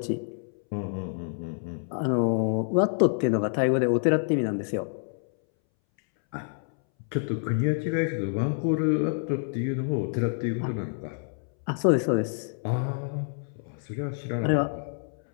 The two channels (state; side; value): silent; right; 60 dB below the other